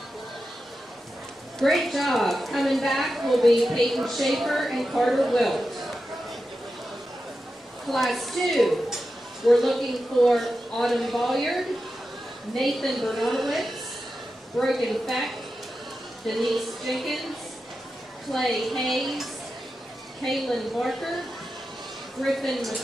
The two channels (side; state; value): both; normal; correlation 0.91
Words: Great job. Coming back will be Peyton Schaefer and Carter Wilt. Class 2, we're looking for Autumn Bolliard, Nathan Bernardowitz, Brogan Feck, Denise Jenkins, Clay Hayes, Kaylin Barker, Griffin